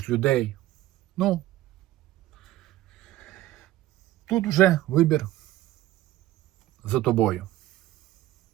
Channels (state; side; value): quieter; left; 15.1 dB